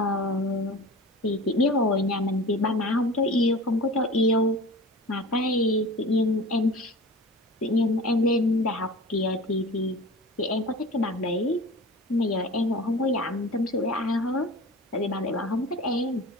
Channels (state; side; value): normal; both; correlation 0.37